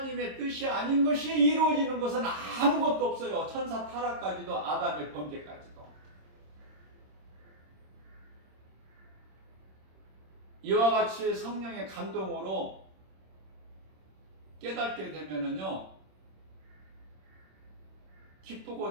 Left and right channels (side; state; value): left; late; 26 ms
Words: 뜻이 아닌 것이 이루어지는 것은 아무것도 없어요. 천사 타락까지도, 아담의 범죄까지도. 이와 같이 성령의 감동으로 깨닫게 되면은요,